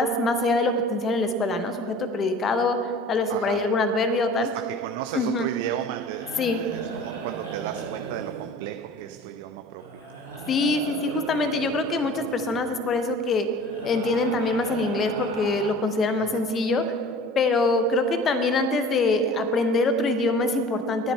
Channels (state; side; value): normal; both; correlation 0.43